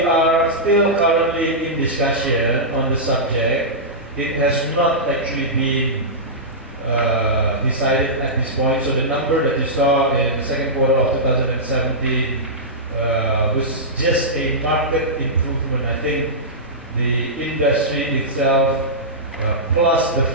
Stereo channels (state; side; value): normal; both; correlation -0.14